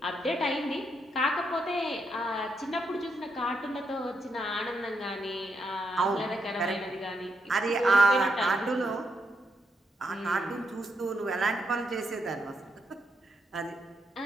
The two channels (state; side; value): normal; both; correlation 0.80